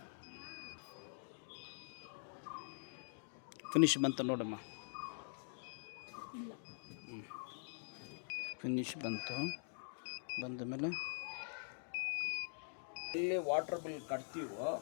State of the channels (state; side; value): silent; right; digital silence